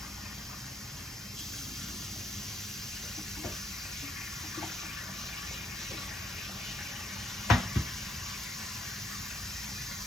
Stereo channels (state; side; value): normal; both; correlation 0.72